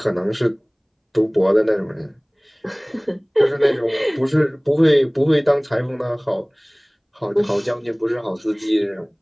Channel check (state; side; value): identical; both; correlation 1.00